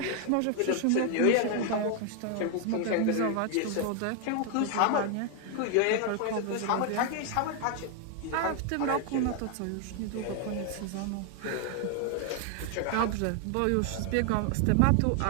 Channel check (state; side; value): different; both; correlation 0.00